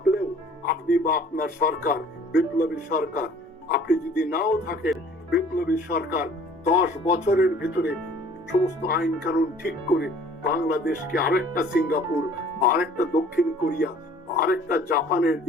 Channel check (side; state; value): both; normal; correlation 0.52